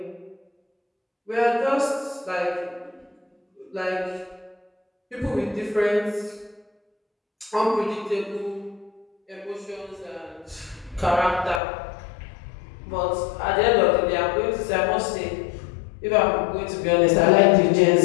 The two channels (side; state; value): right; drops out; at 11.6 s